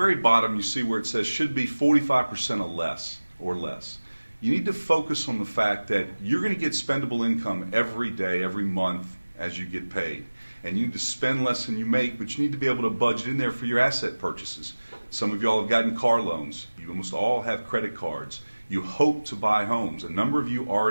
bottom you see where it says should be 45% or less. You need to focus on the fact that you're going to get spendable income every day, every month as you get paid. And you need to spend less than you make, but you need to be able to budget in there for your asset purchases. Some of y'all have gotten car loans. You almost all have credit cards. You hope to buy homes. A number of you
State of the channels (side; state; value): both; inverted; correlation -1.00